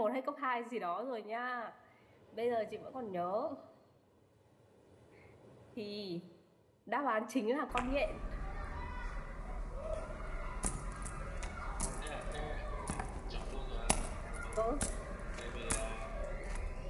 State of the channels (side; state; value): both; identical; correlation 1.00